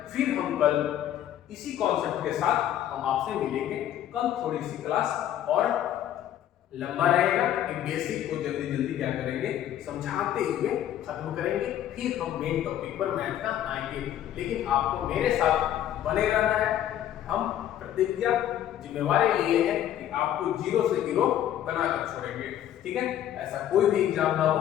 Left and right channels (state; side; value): quieter; right; 11.3 dB